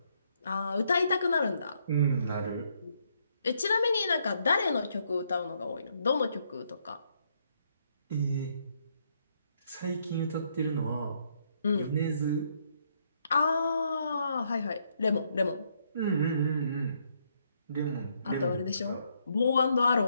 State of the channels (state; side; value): inverted; both; correlation -0.73